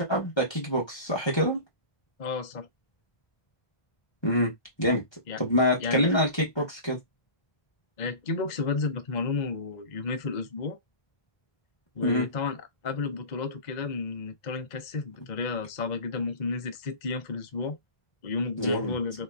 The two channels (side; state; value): right; late; 1.3 ms